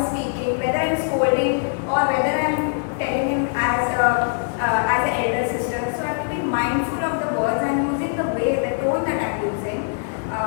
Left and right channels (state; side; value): silent; right; 63 dB below the other